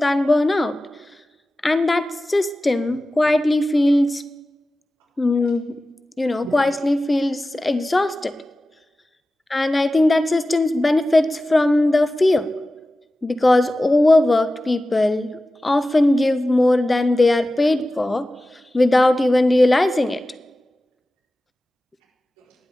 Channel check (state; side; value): normal; both; correlation 0.95